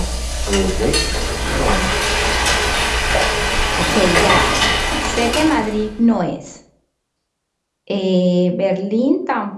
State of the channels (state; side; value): identical; both; correlation 1.00